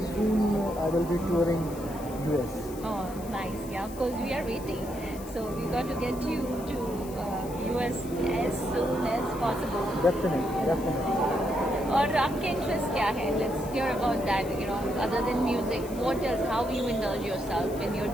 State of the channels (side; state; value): left; noise; hiss, 18 dB below the sound